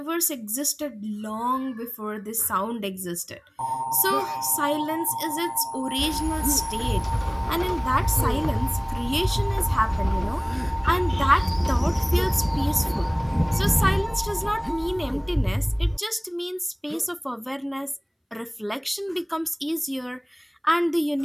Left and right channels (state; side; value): identical; both; correlation 1.00